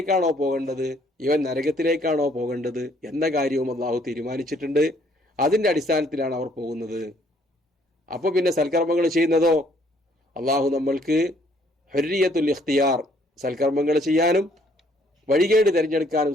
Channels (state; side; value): normal; both; correlation 0.64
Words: പോകേണ്ടത്, ഇവൻ നരകത്തിലേക്കാണോ പോകേണ്ടത് എന്ന കാര്യവും അള്ളാഹു തീരുമാനിച്ചിട്ടുണ്ട്. അതിന്റെ അടിസ്ഥാനത്തിലാണ് അവർ പോകുന്നത്. അപ്പൊ പിന്നെ സൽക്കർമ്മങ്ങൾ ചെയ്യുന്നതോ, അള്ളാഹു നമ്മൾക്ക് ഹുർരിയത്തുൽ ഇഖ്തിയാർ, സൽക്കർമ്മങ്ങൾ ചെയ്യാനും വഴികേട് തിരഞ്ഞെടുക്കാനും